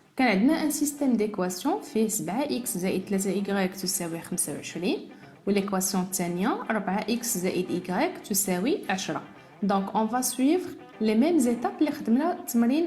كان عندنا un système d'équation فيه 7x زائد 3y تساوي 25 والإيكواسيون الثانية 4x زائد y تساوي 10. Donc on va suivre les mêmes étapes اللي خدمنا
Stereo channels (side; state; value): both; identical; correlation 1.00